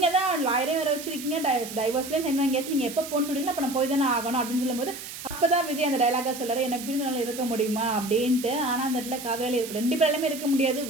தான் லாயரே வேறு வச்சிருக்கீங்க, டைவர்ஸ்லேயே சைன் வாங்கியாச்சு, நீங்கள் எப்போ போன்னு சொல்கிறீங்களா, அப்போ நான் போய் தானே ஆகணும் அப்படின்னு சொல்லும்போது அப்போ தான் விஜய் அந்த டைலாக சொல்கிறார், என்ன பிரிஞ்சனால இருக்க முடியுமா அப்படின்ட்டு. ஆனால் அந்த இடத்துல காவேரியில் 2 பேராலுமே இருக்க முடியாது.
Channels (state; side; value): noise; right; hiss, 11 dB below the sound